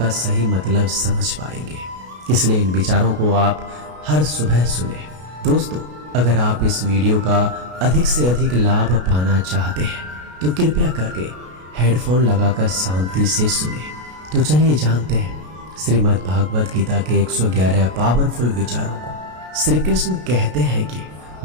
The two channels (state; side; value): late; left; 33 ms